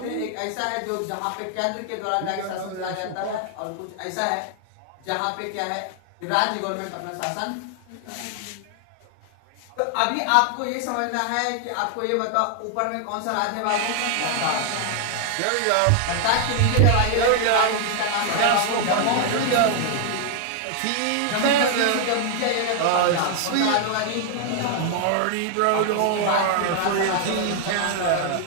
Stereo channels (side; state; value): both; different; correlation 0.00